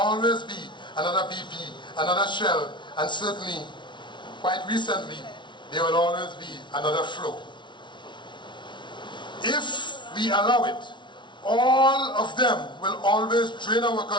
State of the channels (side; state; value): right; late; 0.23 ms